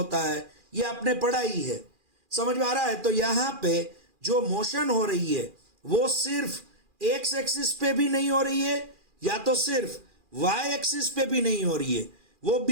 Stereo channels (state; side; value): late; left; 2.4 ms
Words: है। ये आपने पढ़ा ही है। समझ में आ रहा है? तो यहाँ पे जो मोशन हो रही है वो सिर्फ एक्स एक्सिस पे भी नहीं हो रही है, या तो सिर्फ वाई एक्सिस पे भी नहीं हो रही है, वो